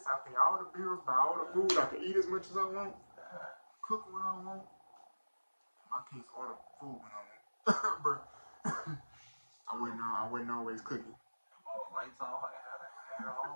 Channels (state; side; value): inverted; both; correlation -1.00